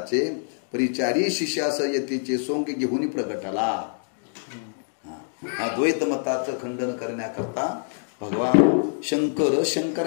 परिचारी शिष्यास यतीचे सोंग घेऊन प्रगटला. हा द्वैतमताचं खंडन करण्याकरता भगवान शंकर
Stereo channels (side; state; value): right; silent; digital silence